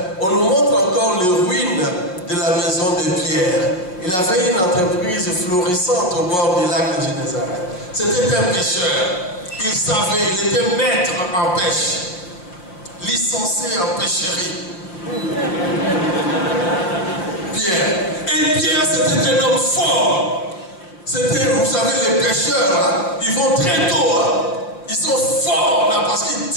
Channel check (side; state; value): right; late; 5.6 ms